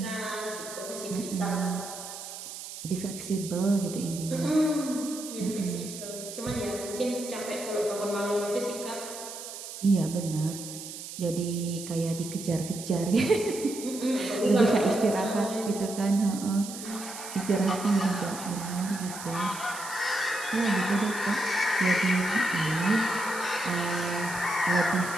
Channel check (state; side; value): noise; right; hiss, 10 dB below the sound